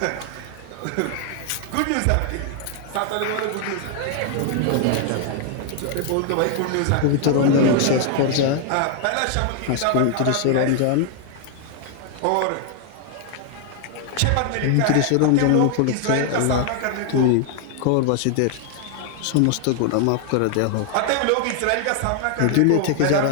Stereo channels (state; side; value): different; both; correlation 0.00